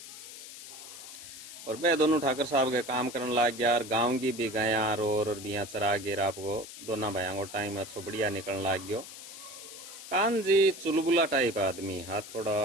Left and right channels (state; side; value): noise; left; hiss, 13 dB below the sound